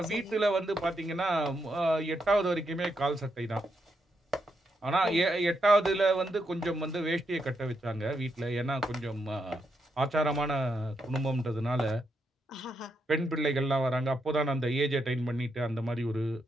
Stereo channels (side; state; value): both; normal; correlation 0.81